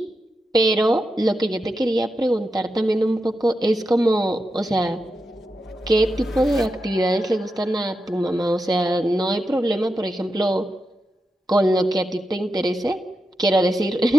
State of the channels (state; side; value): normal; both; correlation 0.88